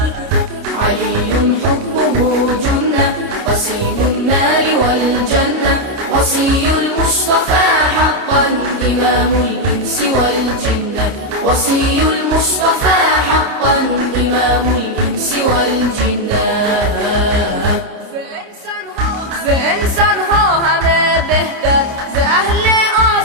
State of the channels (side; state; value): left; late; 29 ms